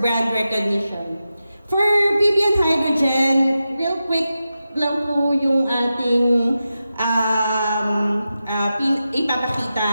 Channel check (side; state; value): both; inverted; correlation -0.91